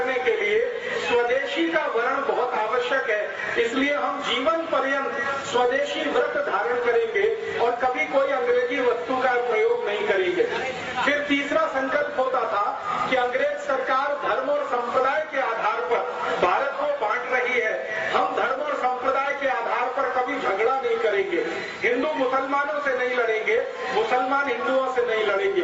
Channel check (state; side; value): identical; both; correlation 1.00